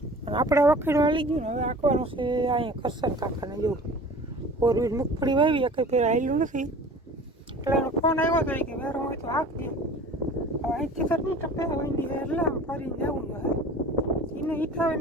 આપણે વખેડું હાલી ગયું ને હવે આંકવાનું છે અહીંયા કરસન કાકાને જોવું 4 વીલ મગફળી વાવી એક ફેર હાલ્યું નથી એટલે એનો ફોન આવ્યો હતો કે વેરો હોય તો હાંકજે. હવે અહીંથી તો નહીં ટપે વંડી એટલે આમ ફરીને જવું જોઈએ એને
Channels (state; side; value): normal; both; correlation 0.42